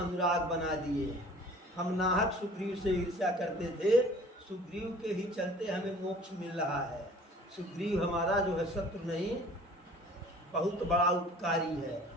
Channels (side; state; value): both; normal; correlation 0.49